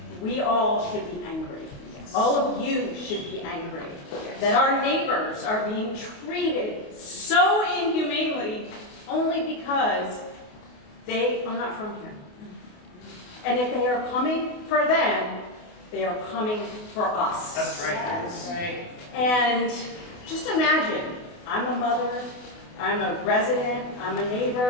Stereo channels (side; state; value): right; late; 28 ms